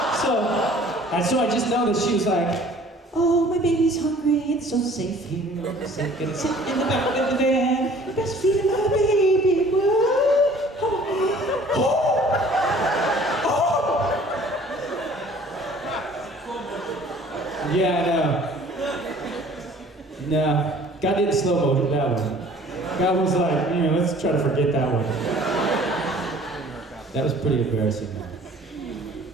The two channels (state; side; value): normal; both; correlation 0.52